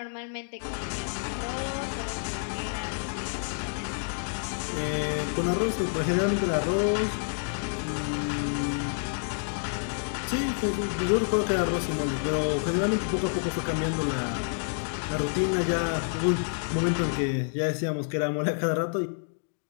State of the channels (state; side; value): silent; right; digital silence